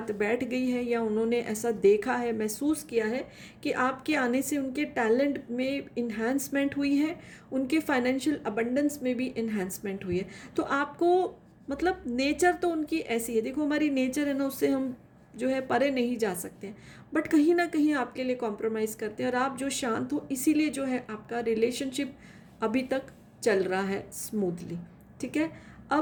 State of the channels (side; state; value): both; identical; correlation 1.00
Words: बैठ गई है, या उन्होंने ऐसा देखा है, महसूस किया है कि आपके आने से उनके टैलेंट में इन्हांसमेंट हुई है, उनके फाइनेंशियल अबंडेंस में भी इन्हांसमेंट हुई है। तो आपको मतलब नेचर तो उनकी ऐसी है, देखो हमारी नेचर है ना, उससे हम जो है परे नहीं जा सकते हैं। बट कहीं ना कहीं आपके लिए कॉम्प्रोमाइज़ करते हैं, और आप जो शांत हो, इसीलिए जो है आपका रिलेशनशिप अभी तक चल रहा है स्मूथली। ठीक है।